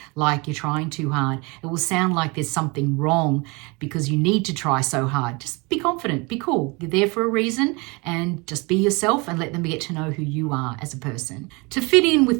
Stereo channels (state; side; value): quieter; left; 27.6 dB